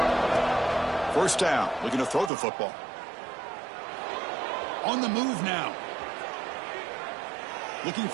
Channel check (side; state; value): left; drops out; at 2.3 s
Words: First down, looking to throw the football. On the move now. Looking